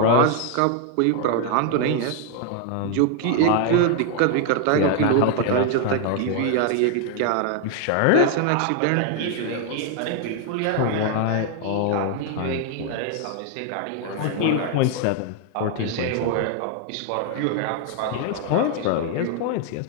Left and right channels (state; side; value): different; both; correlation 0.00